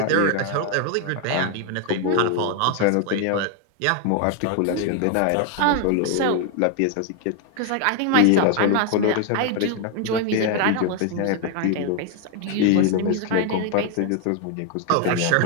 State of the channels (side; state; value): both; different; correlation 0.00